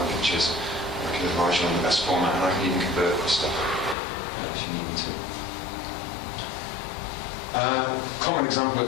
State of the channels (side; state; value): right; drops out; at 4.0 s